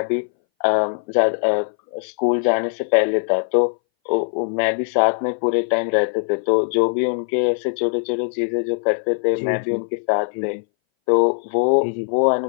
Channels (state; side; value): silent; right; 62 dB below the other